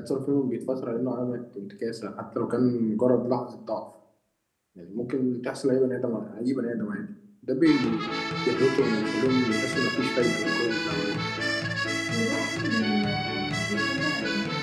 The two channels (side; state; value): both; identical; correlation 1.00